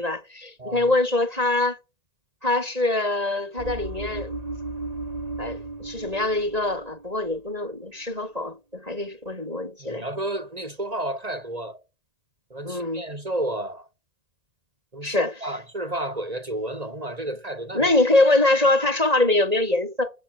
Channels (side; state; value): left; late; 1.9 ms